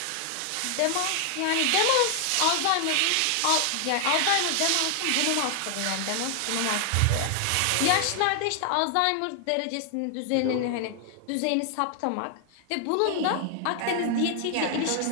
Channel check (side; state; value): both; different; correlation 0.00